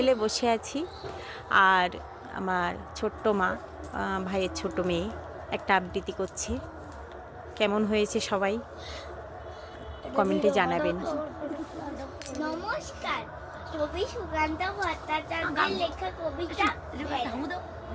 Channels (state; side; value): identical; both; correlation 1.00